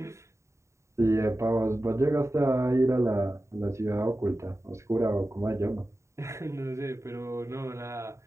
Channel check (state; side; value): late; left; 0.14 ms